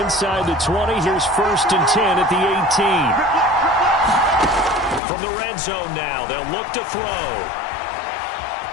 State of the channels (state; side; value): drops out; right; at 5.0 s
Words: the 20, here's 1st and 10 at the 18. From the red zone now, they'll look to throw.